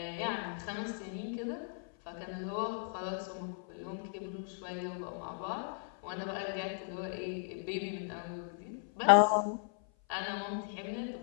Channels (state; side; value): silent; right; 53 dB below the other